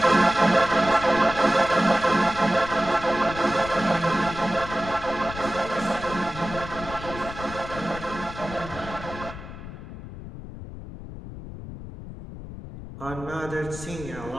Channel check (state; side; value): noise; left; rumble, 12 dB below the sound